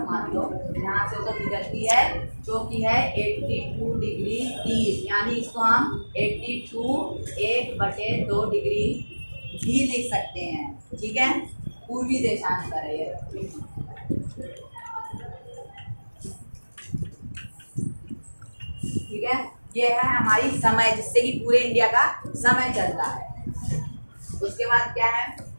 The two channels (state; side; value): inverted; both; correlation -1.00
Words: मान लो, यहाँ से होकर गुजरती है, जो कि है 82 डिग्री 30, यानी इसको हम 82 1/2 डिग्री भी लिख सकते हैं। ठीक है, पूर्वी देशांतर है ये। ठीक है, ये है हमारी समय, जिससे कि पूरे इंडिया का समय चलता है। उसके बाद क्या है,